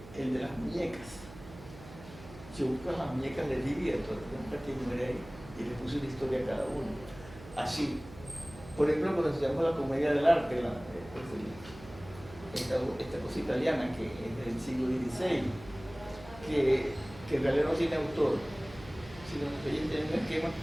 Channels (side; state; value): right; noise; hum, 17 dB below the sound